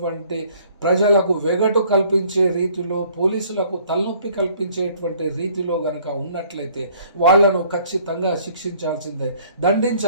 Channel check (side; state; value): both; inverted; correlation -0.58